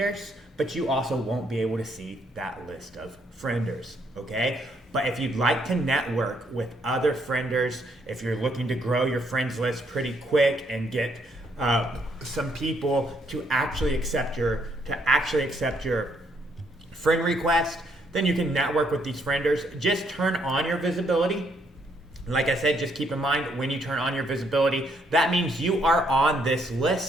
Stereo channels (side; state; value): both; normal; correlation 0.71